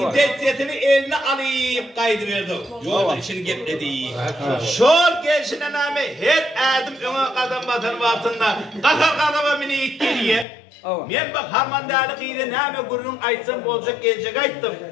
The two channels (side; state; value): right; drops out; at 10.5 s